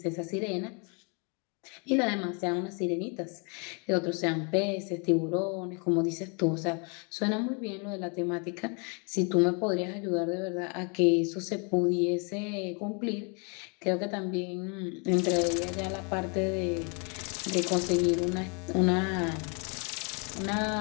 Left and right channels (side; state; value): right; quieter; 35.3 dB